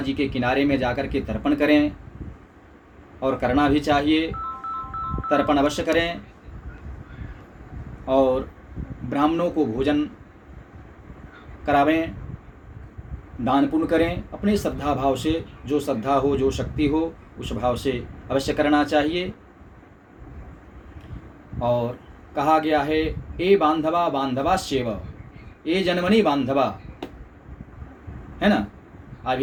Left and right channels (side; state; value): both; identical; correlation 1.00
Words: के किनारे में जाकर के तर्पण करें, और करना भी चाहिए। तर्पण अवश्य करें और ब्राह्मणों को भोजन करावें, दान पुण्य करें। अपने श्रद्धा भाव से, जो श्रद्धा हो, जो शक्ति हो, उस भाव से अवश्य करना चाहिए। और कहा गया है, ए बांधवा बांधवाश्चैव, ए जन्मनि बांधवा, है ना।